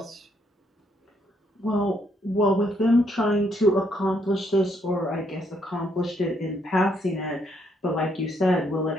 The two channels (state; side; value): normal; both; correlation 0.73